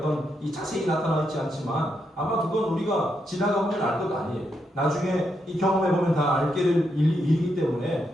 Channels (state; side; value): normal; both; correlation 0.81